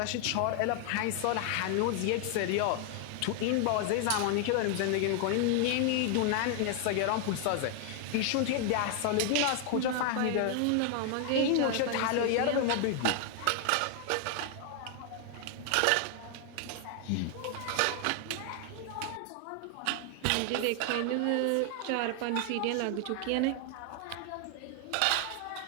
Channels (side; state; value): both; different; correlation 0.00